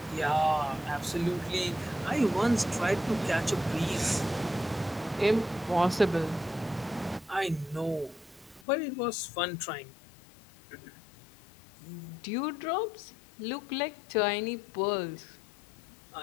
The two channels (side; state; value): right; drops out; at 8.7 s